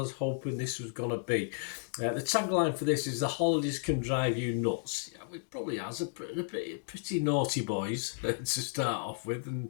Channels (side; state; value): right; silent; digital silence